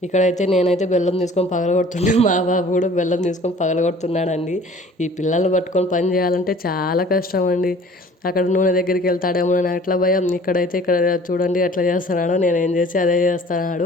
ఇక్కడైతే నేనైతే బెల్లం తీసుకొని పగలగొడుతున్నాను, మా బాబు కూడా బెల్లం తీసుకొని పగలగొడుతున్నాడండి. ఈ పిల్లల్ని పట్టుకొని పని చేయాలంటే చాలా కష్టం అండి. అక్కడ నూనె దగ్గరికి వెళ్తాడేమో అని అట్లా భయం. ఇక్కడ చూడండి ఎట్లా చేస్తున్నాడో, నేను ఏం చేసి అదే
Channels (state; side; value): normal; both; correlation 0.50